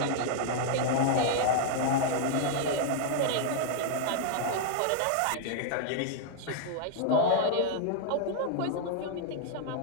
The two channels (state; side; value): different; both; correlation -0.01